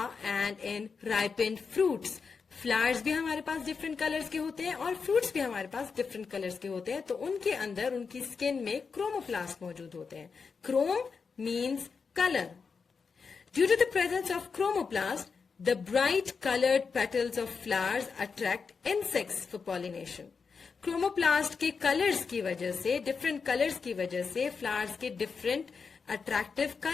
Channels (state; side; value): quieter; right; 5.3 dB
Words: and in ripened fruits. Flowers भी हमारे पास डिफरेंट कलर्स के होते हैं और फ्रूट्स भी हमारे पास डिफरेंट कलर्स के होते हैं, तो उनके अंदर उनकी स्किन में क्रोमोप्लास्ट मौजूद होते हैं. Chrome means colour. Due to the presence of chromoplast, the bright coloured petals of flowers attract insects for pollination. Chromoplast के कलर्स की वजह से, डिफरेंट कलर्स की वजह से फ्लावर्स के डिफरेंट attractive